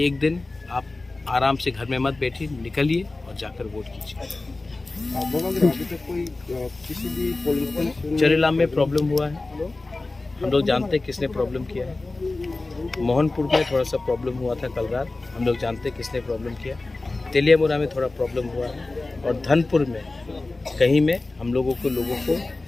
एक दिन आप आराम से घर में मत बैठिए, निकलिए और जाकर वोट कीजिए। चरेलाम में प्रॉब्लम हुआ है, हम लोग जानते हैं किसने प्रॉब्लम किया है। मोहनपुर में थोड़ा सा प्रॉब्लम हुआ था कल रात, हम लोग जानते हैं किसने प्रॉब्लम किया। तेलियामुरा में थोड़ा प्रॉब्लम हुआ है, और धनपुर में कहीं में हम लोगों को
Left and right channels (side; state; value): right; quieter; 3.2 dB